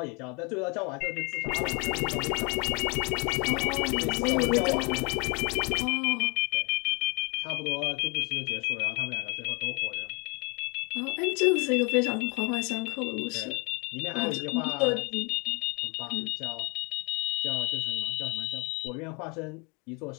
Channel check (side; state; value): right; quieter; 30.7 dB